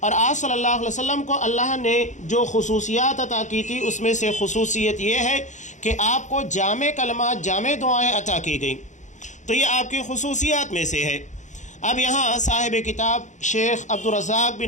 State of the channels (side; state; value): right; late; 0.35 ms